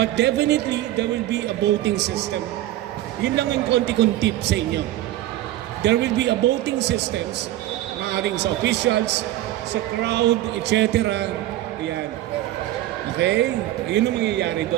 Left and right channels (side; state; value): left; quieter; 14.6 dB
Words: definitely, there will be a voting system. Yun lang yung konti-kong tip sa inyo. There will be a voting systems, maaaring sa officials, sa crowd, etc. Ayan. Okay? Ayun ang mangyayari